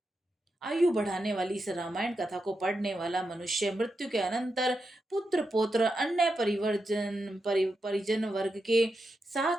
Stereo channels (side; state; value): both; normal; correlation 0.87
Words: आयु बढ़ाने वाली इस रामायण कथा को पढ़ने वाला मनुष्य मृत्यु के अनंतर पुत्र पौत्र अन्य परिजन वर्ग के